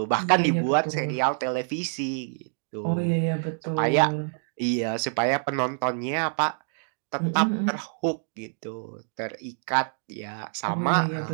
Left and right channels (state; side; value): silent; left; digital silence